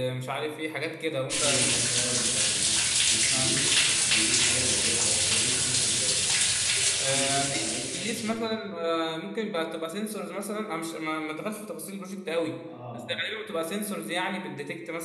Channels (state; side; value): identical; both; correlation 1.00